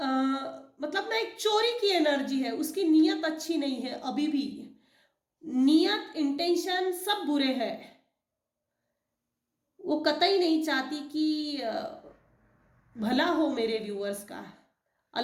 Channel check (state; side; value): identical; both; correlation 1.00